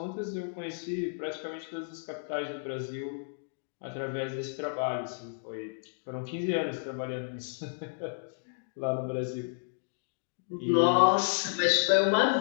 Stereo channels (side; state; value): right; silent; digital silence